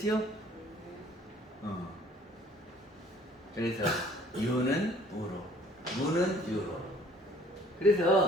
그래서 유는 무로, 무는 유로.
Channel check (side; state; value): both; normal; correlation 0.56